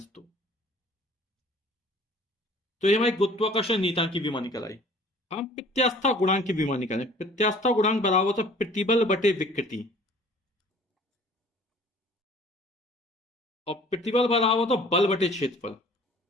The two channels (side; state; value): both; normal; correlation 0.51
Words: तो ये हमारी गुरुत्वाकर्षण नियतांक की विमा निकल आई। हम प्रत्यास्था गुणांक की विमा निकालें। प्रत्यास्था गुणांक बराबर होता है प्रतिबल बटे विकृति, और प्रतिबल बराबर होता है बल बटे क्षेत्रफल